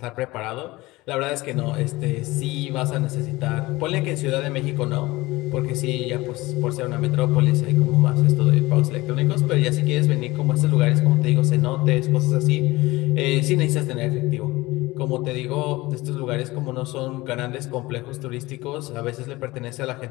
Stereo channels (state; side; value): quieter; right; 20.2 dB